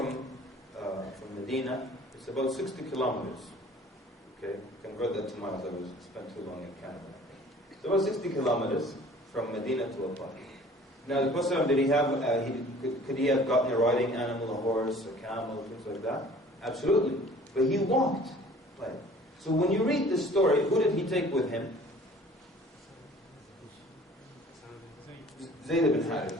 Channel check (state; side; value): normal; both; correlation 0.50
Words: Medina? It's about 60 kilometers. Okay, convert that to miles. I spent too long in Canada. It's about 60 kilometers from Medina to Al-Ta'if. Now, the Prophet, did he have? Could he have gotten a riding animal, a horse, a camel, things like that? Absolutely. But he walked. Right. So when you read this story, who did he take with him? Zayd ibn Harith.